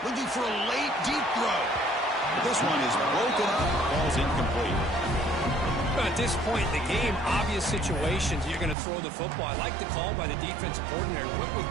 Looking for a late, deep throw. But this one is broken up. Ball's incomplete. At this point in the game, obvious situations, you're going to throw the football. I like the call by the defensive coordinator. Went with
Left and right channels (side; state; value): left; drops out; at 8.8 s